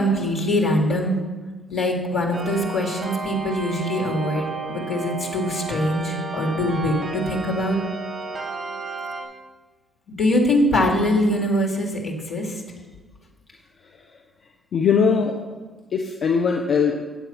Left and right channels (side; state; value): both; normal; correlation 0.60